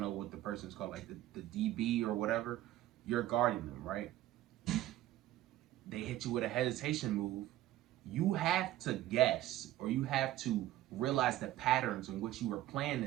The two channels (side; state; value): left; quieter; 14.5 dB